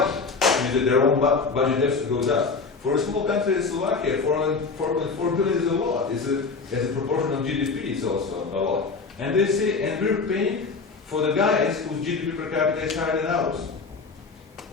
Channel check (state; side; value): quieter; right; 4.5 dB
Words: It means that their own budget has to go down. For a small country as Slovakia, 4.4 billion is a lot. As a proportion of GDP, it's also a lot. And they say, and we're paying for the guys whose GDP per capita is higher than ours.